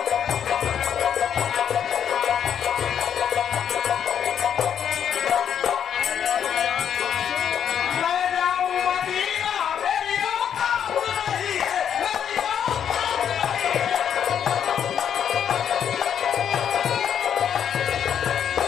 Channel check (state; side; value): quieter; right; 8.6 dB